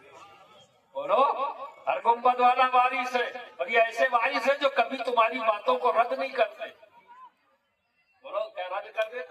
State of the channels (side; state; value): both; identical; correlation 1.00